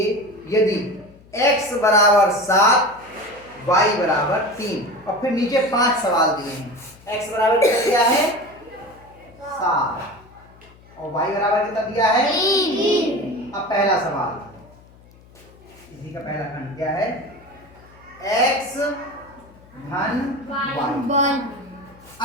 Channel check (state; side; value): noise; left; hum, 25 dB below the sound